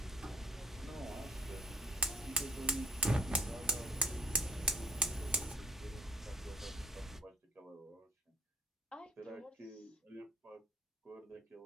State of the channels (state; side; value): normal; both; correlation 0.58